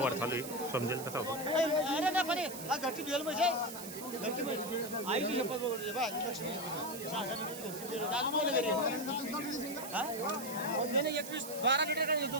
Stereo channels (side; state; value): right; noise; hiss, 10 dB below the sound